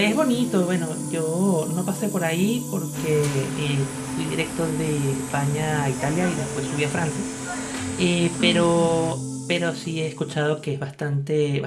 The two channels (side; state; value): both; identical; correlation 1.00